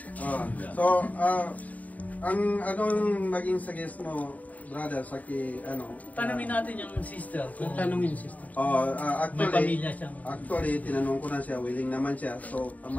Ang anong maging suggest mo, brother, sa tanungin natin yung sister. Kung Tanungin sister. may pamilya siyang... Actually, tinanong ko na siya, willing naman siya. So,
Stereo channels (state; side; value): late; right; 0.073 ms